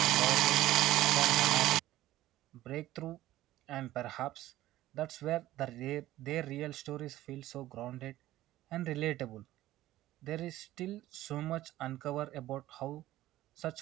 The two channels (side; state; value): left; quieter; 15.2 dB